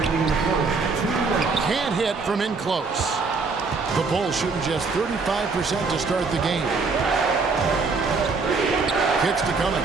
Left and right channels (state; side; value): quieter; left; 4.4 dB